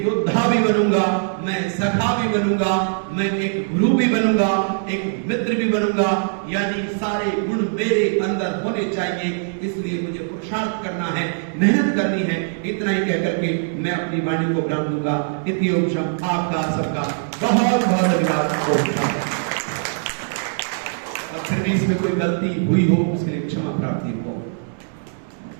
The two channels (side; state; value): left; silent; digital silence